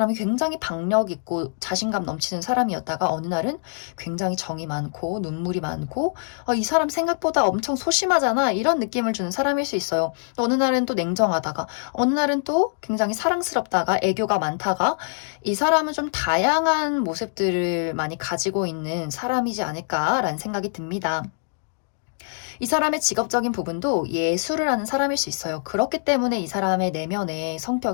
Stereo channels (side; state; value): right; silent; digital silence